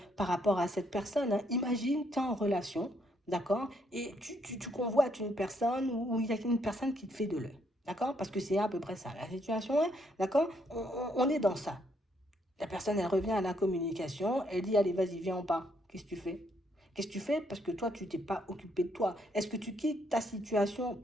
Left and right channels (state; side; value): normal; both; correlation 0.72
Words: par rapport à cette personne, hein. Imagine, tu es en relation. D'accord? Et tu convoites une personne ou il y a une personne qui te fait de l'œil. D'accord? Parce que c'est à peu près ça la situation, hein. D'accord? On est dans ça. La personne, elle revient à la communication, elle dit, allez, vas-y, viens, on part. Qu'est-ce que tu fais? Qu'est-ce que tu fais? Parce que toi, tu t'es pas occupé de toi. Est-ce que tu quittes ta situation